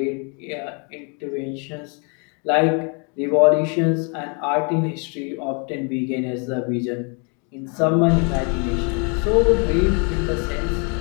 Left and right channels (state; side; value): quieter; right; 35.9 dB